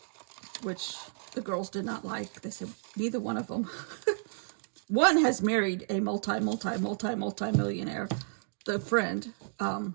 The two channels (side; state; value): left; silent; digital silence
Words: which the girls did not like. They said neither one of them. One has married a multi-millionaire, the friend, and